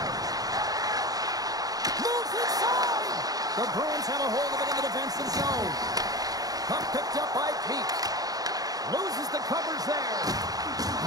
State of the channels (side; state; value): left; late; 0.18 ms